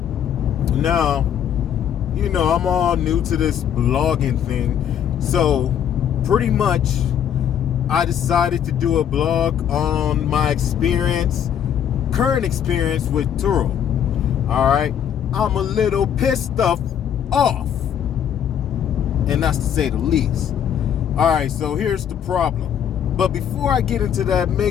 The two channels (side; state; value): right; quieter; 9.1 dB